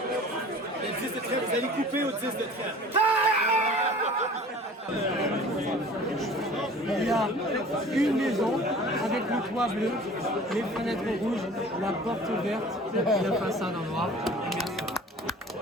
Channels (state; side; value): normal; both; correlation 0.45